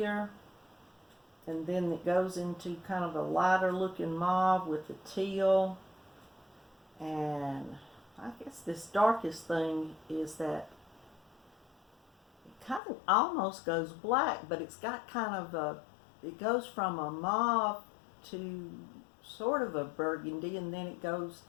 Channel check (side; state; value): right; drops out; at 12.8 s